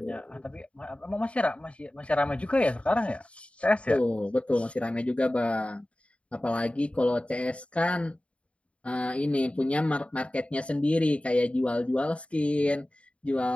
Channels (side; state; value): right; late; 0.061 ms